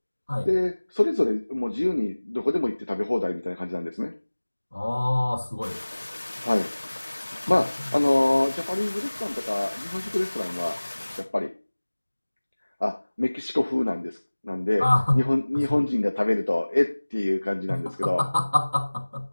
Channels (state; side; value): inverted; both; correlation -1.00